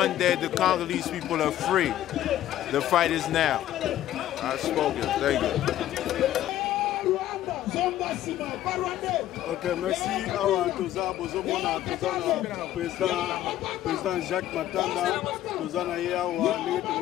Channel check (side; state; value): right; quieter; 12.9 dB